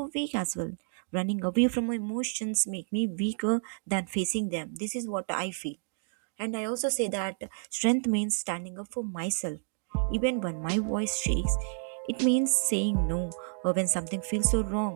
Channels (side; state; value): left; silent; digital silence